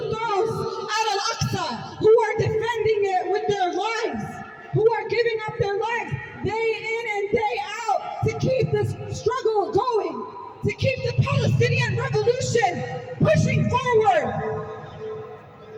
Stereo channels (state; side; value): identical; both; correlation 1.00